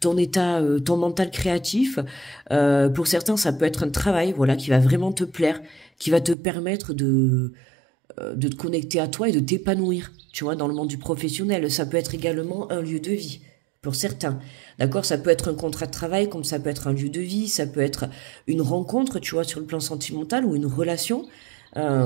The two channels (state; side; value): drops out; left; at 6.4 s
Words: ton état, ton mental créatif. Pour certains, ça peut être un travail, voilà, qui va vraiment te plaire, qui va te permettre de te connecter à toi et de t'épanouir, tu vois, dans le monde du professionnel. Ça peut être également un lieu de vie, pour certains. D'accord? Ça peut être un contrat de travail, comme ça peut être un lieu de vie, ça peut être une rencontre, tu vois, sur le plan sentimental ou une relation.